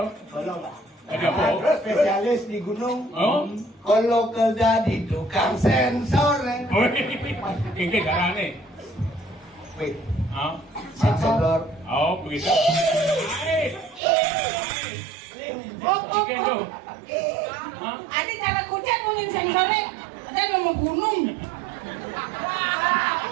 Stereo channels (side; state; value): left; drops out; at 14.0 s